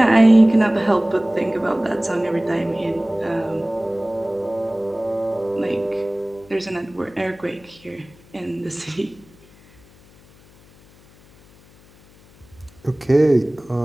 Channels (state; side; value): noise; left; hum, 27 dB below the sound